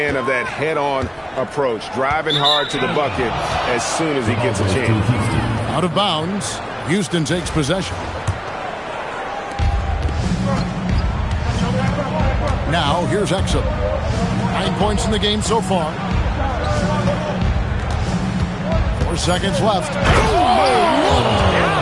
of that head-on approach, driving hard to the bucket as soon as he gets a chance. Out of bounds. Houston takes possession. Now, here's Exum. 9 points in the game so far. 4 seconds left.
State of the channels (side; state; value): both; identical; correlation 1.00